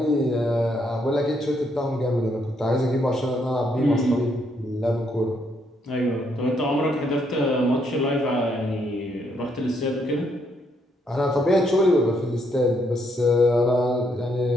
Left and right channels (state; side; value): normal; both; correlation 0.73